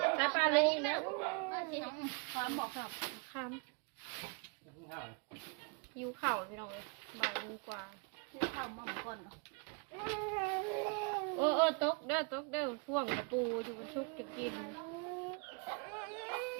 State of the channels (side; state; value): left; quieter; 33.3 dB